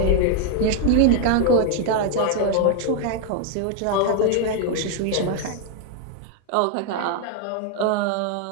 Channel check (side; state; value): both; different; correlation 0.01